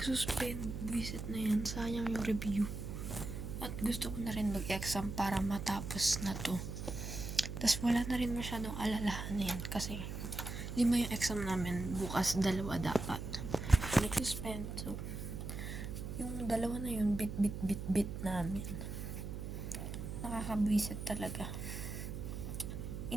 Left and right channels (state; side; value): noise; right; hum, 6 dB below the sound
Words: Buisit na yan. Sayang yung review. At gusto ko na rin mag-exam para matapos na to. Tapos wala na rin masyadong alalahanin. Kasi, 5 yung exam namin. Bukas 2 dapat. Nagsuspend. So, yung 2 na yun, bit namin. Nakakabwisit talaga.